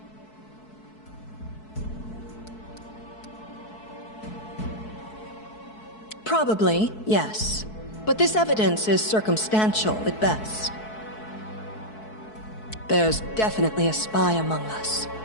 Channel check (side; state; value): right; late; 4.6 ms